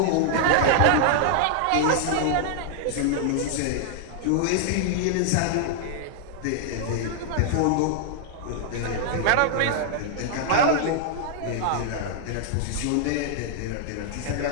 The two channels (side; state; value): both; different; correlation -0.01